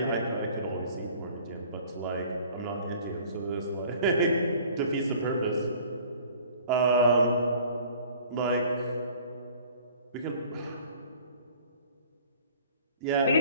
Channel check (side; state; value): both; inverted; correlation -0.51